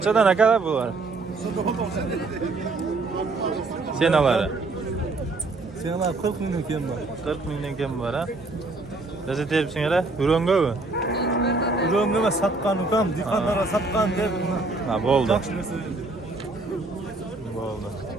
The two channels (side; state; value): left; quieter; 3.4 dB